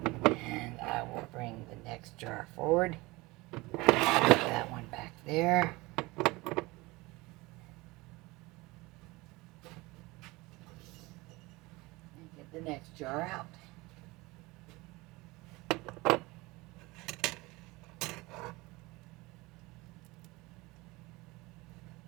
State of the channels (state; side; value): quieter; left; 22.4 dB